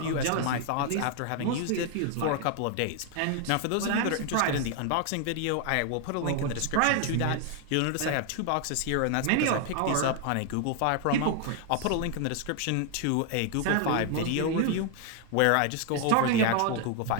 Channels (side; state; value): both; different; correlation 0.00